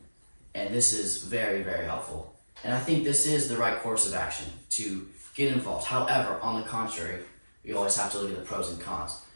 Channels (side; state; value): both; inverted; correlation -1.00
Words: And this is very, very helpful. And I think this is the right course of action, to get involved. However, on the contrary, you always have to look at the pros and cons.